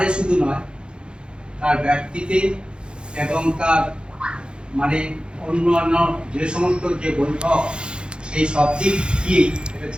শুধু নয়, তার ব্যক্তিতে এবং তার মানে অন্যান্য যে সমস্ত যে বৈঠক, সেই সব দিক দিয়েই এটা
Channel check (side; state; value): left; late; 0.052 ms